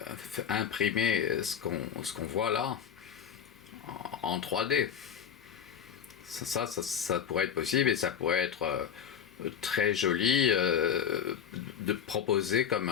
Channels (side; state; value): right; quieter; 8.2 dB